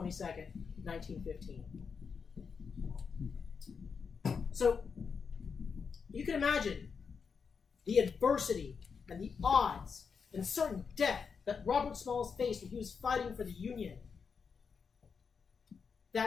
1915. So you can imagine the adversity and the odds and certain death that Robert Smalls faced when he was fighting for the Union.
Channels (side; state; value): right; quieter; 5.8 dB